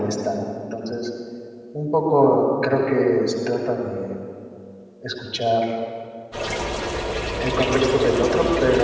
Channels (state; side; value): identical; both; correlation 1.00